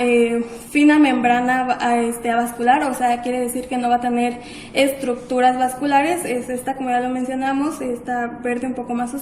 fina membrana avascular, o sea, quiere decir que no va a tener estructuras vasculares, es esta, como ya lo mencionamos, esta verde un poco más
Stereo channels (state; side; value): identical; both; correlation 1.00